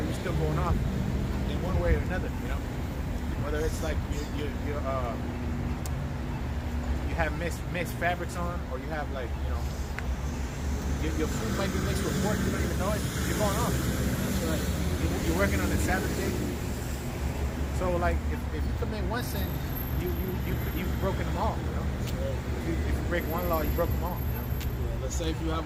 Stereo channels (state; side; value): identical; both; correlation 1.00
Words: still going off in one way or another, you know? Whether it's like you have mixed fabrics on, or you have, like, you know, your food might be mixed with pork, you don't even know it, you're going off. That's right. You're working on the Sabbath day. So, like, if you commit one sin, you've broken them all, you know? If you break one law, you broke them all, you know? Yeah, let's say if you have